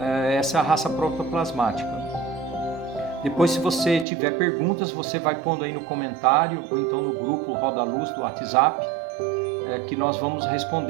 é a raça protoplasmática. Depois, se você tiver perguntas, você vai pondo aí no comentário ou então no grupo Roda Luz do WhatsApp, que nós vamos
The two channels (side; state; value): left; drops out; at 4.0 s